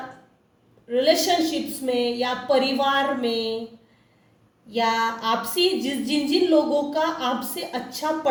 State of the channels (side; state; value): both; identical; correlation 1.00